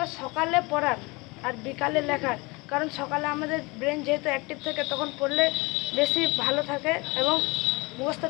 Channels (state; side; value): quieter; right; 25.7 dB